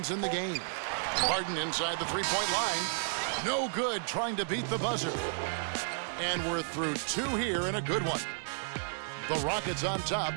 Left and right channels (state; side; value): silent; left; digital silence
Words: in the game. Harden inside the three-point line. No good, trying to beat the buzzer. And we're through 2 here and a good one. The Rockets on top,